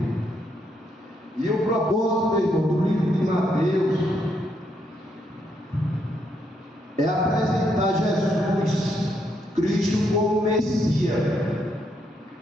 E o propósito, meu irmão, do livro de Mateus é apresentar Jesus Cristo como Messias,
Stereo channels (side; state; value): both; normal; correlation 0.76